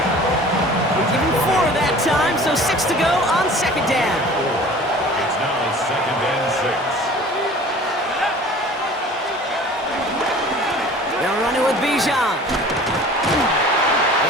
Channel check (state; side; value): normal; both; correlation 0.45